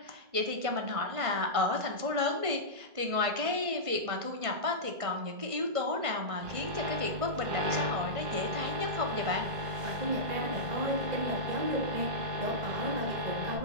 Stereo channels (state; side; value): late; left; 1.5 ms